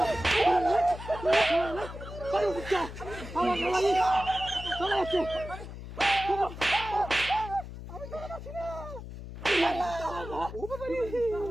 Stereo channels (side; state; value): left; noise; hum, 11 dB below the sound